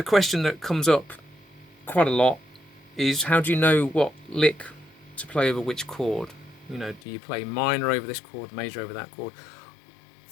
question that comes up quite a lot is, how do you know what lick to play over which chord? You know, do you play minor over this chord, major over that chord?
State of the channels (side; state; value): right; drops out; at 7.0 s